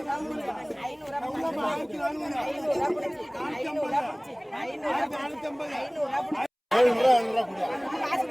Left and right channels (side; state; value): both; identical; correlation 1.00